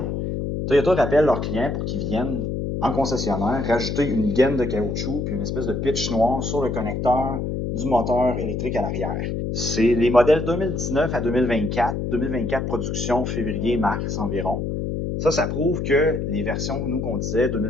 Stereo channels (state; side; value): noise; left; hum, 2 dB below the sound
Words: Toyota rappelle leurs clients pour qu'ils viennent en concessionnaire rajouter une gaine de caoutchouc puis une espèce de pitch noir sur le connecteur du moteur électrique à l'arrière. C'est les modèles 2019 à 2024, 2024 production février-mars environ. Ça prouve que les versions, nous, qu'on disait